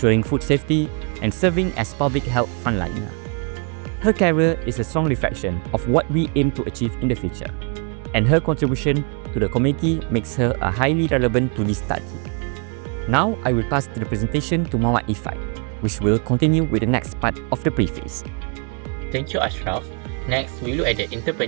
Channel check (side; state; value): left; quieter; 37.8 dB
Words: food safety, and serving as public health frontliner. Her career is a strong reflection of what we aim to achieve in the future, and her contribution to the community makes her a highly relevant to this study. Now, I will pass the presentation to Muhammad Ifat, which will continue with the next part of the preface. Thank you, Ashraf. Next, we look at the